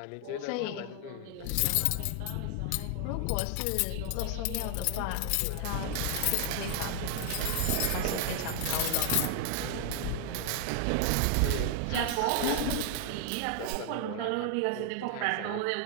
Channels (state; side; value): different; both; correlation 0.00